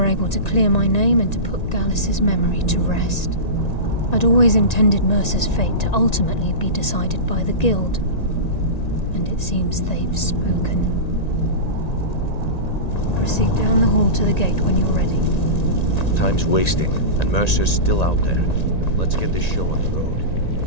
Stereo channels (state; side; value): late; right; 1.9 ms